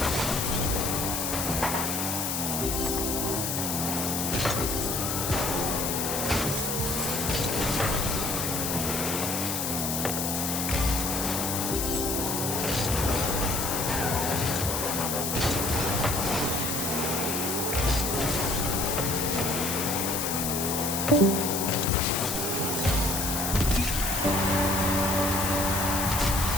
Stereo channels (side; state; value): left; noise; hiss, 1 dB below the sound